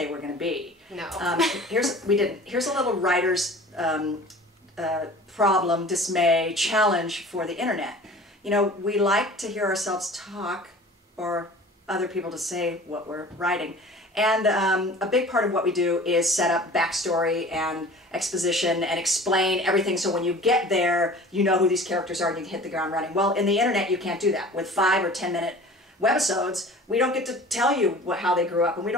were going to be. No. Here's a little writer's problem, dismay, challenge for the internet. You know, we like to hear ourselves talk, or other people to say what we're writing. And a big part of what we do is set up backstory and exposition and explain everything, so when you get there, you know who these characters are and you can hit the ground running. Well, in the internet, you can't do that. With 5 or 10 minute webisodes, we don't get to tell you how they grew up, and we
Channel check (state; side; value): normal; both; correlation 0.43